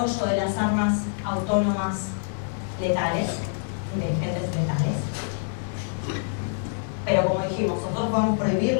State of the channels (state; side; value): silent; right; digital silence